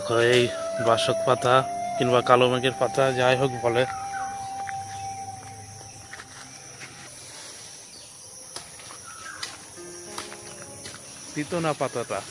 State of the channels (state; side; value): identical; both; correlation 1.00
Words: এই বাসক পাতা কিংবা কালো মেঘের পাতা যাই হোক বলে, তিতো না পাতাটা।